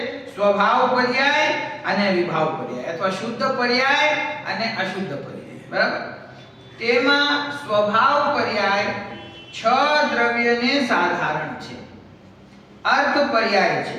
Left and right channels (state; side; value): identical; both; correlation 1.00